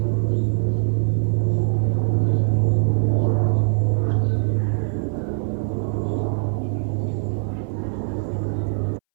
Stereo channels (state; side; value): silent; left; 63 dB below the other